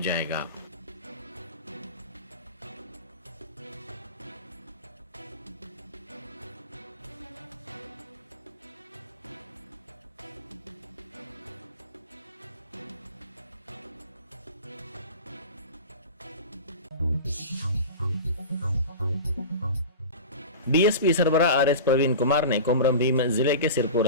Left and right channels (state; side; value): inverted; both; correlation -0.31